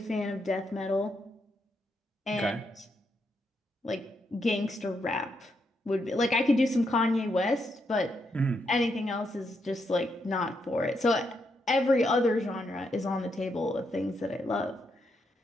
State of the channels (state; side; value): normal; both; correlation 0.80